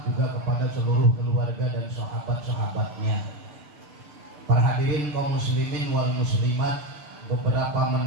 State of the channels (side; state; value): left; late; 6.8 ms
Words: juga kepada seluruh keluarga dan sahabat-sahabatnya. Para hadirin kaum muslimin wal muslimat, beberapa